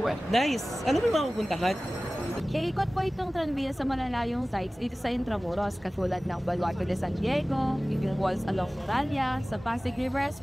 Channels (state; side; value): normal; both; correlation 0.97